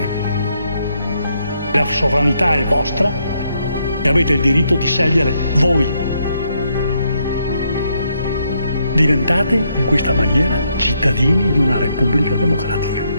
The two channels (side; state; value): both; inverted; correlation -0.76